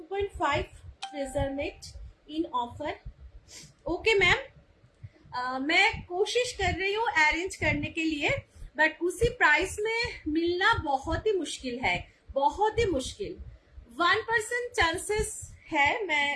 freezer mate in offer? Okay ma'am, मैं कोशिश कर रही हूँ अरेंज करने के लिए, बट उसी प्राइस में मिलना बहुत ही मुश्किल है, बहुत ही मुश्किल। 1% चांसेस है, मैं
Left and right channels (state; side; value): identical; both; correlation 1.00